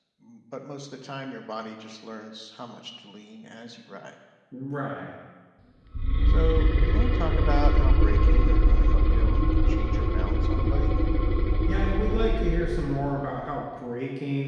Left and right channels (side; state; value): both; identical; correlation 1.00